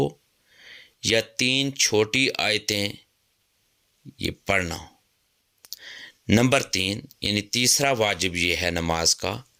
یا 3 چھوٹی آیتیں یہ پڑھنا۔ نمبر 3 یعنی تیسرا واجب یہ ہے نماز کا،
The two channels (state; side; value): identical; both; correlation 1.00